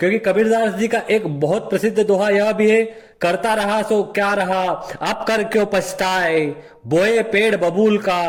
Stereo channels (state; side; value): identical; both; correlation 1.00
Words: कबीरदास जी का एक बहुत प्रसिद्ध दोहा यह भी है, करता रहा सो क्या रहा, अब कर क्यों पछताए, बोए पेड़ बबूल का,